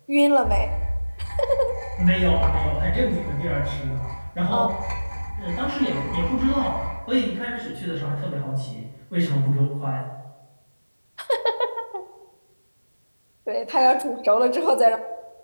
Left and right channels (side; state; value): both; inverted; correlation -1.00